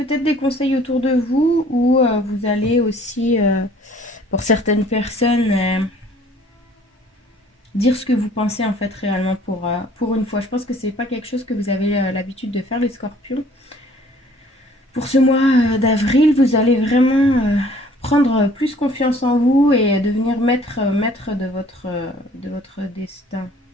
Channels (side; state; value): both; normal; correlation 0.55